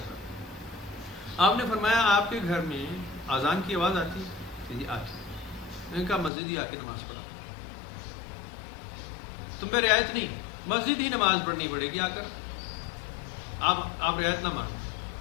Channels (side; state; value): right; drops out; at 6.3 s